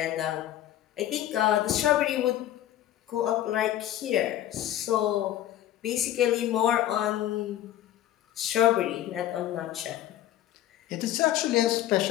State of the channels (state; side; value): quieter; right; 12.7 dB